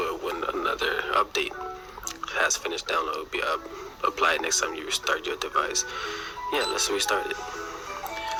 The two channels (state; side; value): identical; both; correlation 1.00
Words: when another update has finished download, will be applied next time you restart your device. Yeah, let's restart it.